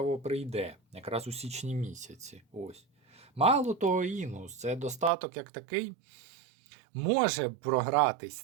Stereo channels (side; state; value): left; drops out; at 5.1 s